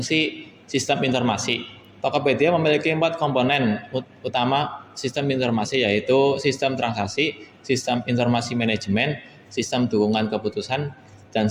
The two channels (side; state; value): both; identical; correlation 1.00